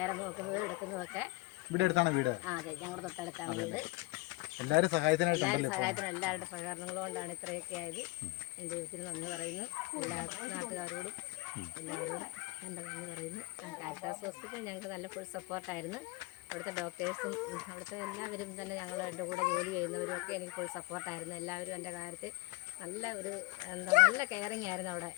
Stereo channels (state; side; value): quieter; right; 23.6 dB